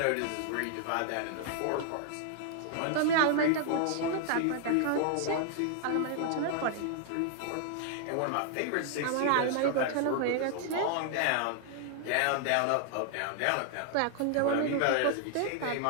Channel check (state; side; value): different; both; correlation 0.00